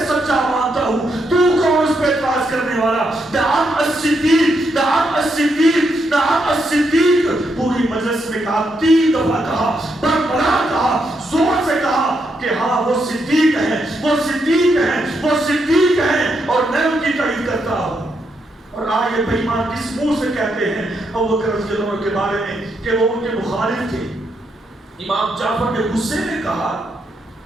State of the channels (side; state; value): both; normal; correlation 0.80